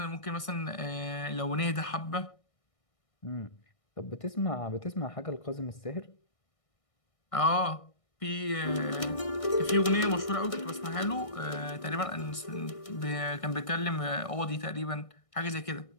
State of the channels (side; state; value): right; late; 1.6 ms